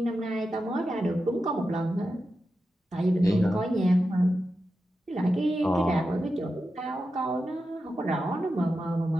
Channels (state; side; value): normal; both; correlation 0.90